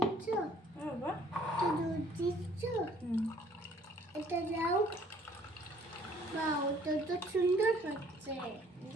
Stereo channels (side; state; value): both; normal; correlation 0.59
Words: বাবা একটু দুধ দিচ্ছ? এটা দাও। বা ওটা তো সুন্দর হচ্ছে।